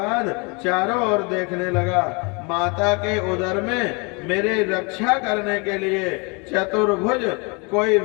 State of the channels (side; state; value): right; quieter; 31.5 dB